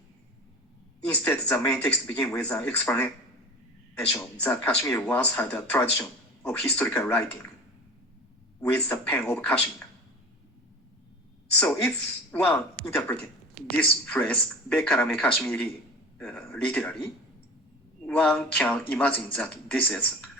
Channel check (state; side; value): normal; both; correlation 0.36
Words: Instead, the main text begins with an explanation that Kashmir once had a tradition of historical writing with the pen of Kashmir. So if one interpreted this phrase, Bekarame Kashmiri, literally, one can imagine that this is